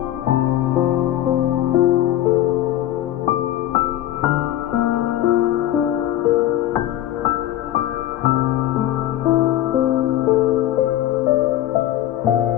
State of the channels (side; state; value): right; quieter; 13.3 dB